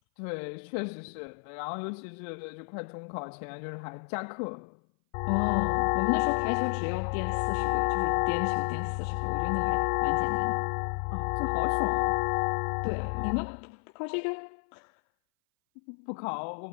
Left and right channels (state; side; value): silent; right; 57 dB below the other